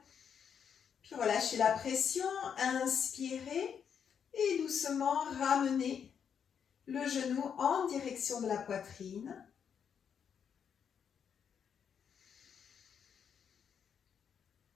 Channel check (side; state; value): right; quieter; 7.5 dB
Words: Puis relâchez la pression. Inspirez et doucement ramenez le genou en direction de la poitrine.